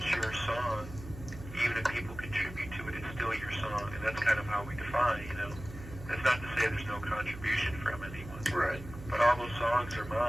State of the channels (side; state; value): right; noise; hum, 13 dB below the sound